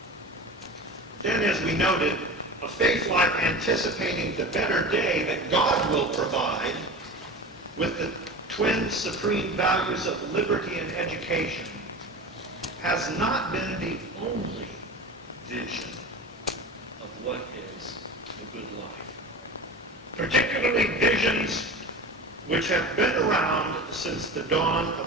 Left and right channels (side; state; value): both; normal; correlation 0.32